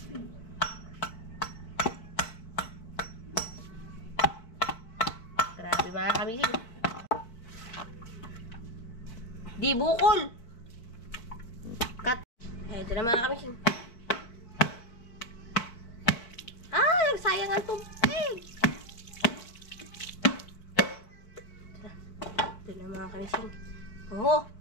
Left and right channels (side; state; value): right; late; 4.5 ms